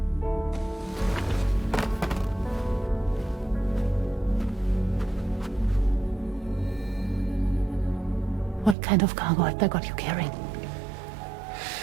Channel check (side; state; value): left; drops out; at 8.8 s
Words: What kind of cargo have they got you carrying?